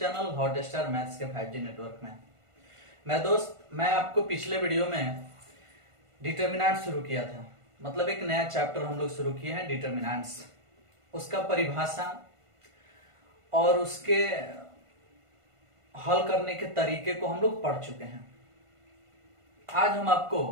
hot star maths के 5G नेटवर्क में। मैं आपको पिछले वीडियो में डिटर्मिनेंट शुरू किया था, मतलब एक नया चैप्टर हम लोग शुरू किए हैं डिटर्मिनेंट्स। उसका परिभाषा और उसके हल करने के तरीके को हम लोग पढ़ चुके हैं। आज हम आपको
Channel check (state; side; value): late; left; 1.5 ms